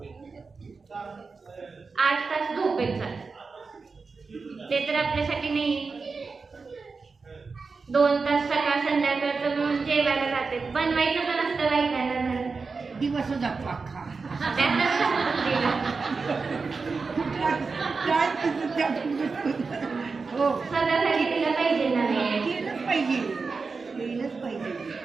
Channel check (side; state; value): left; quieter; 4.5 dB